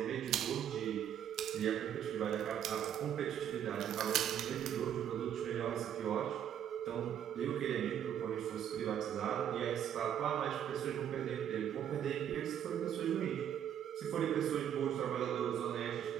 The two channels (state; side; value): quieter; left; 9.7 dB